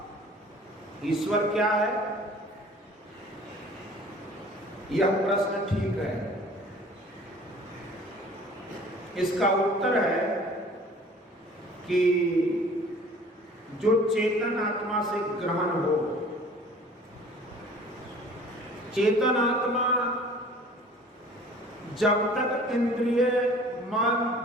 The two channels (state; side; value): normal; both; correlation 0.48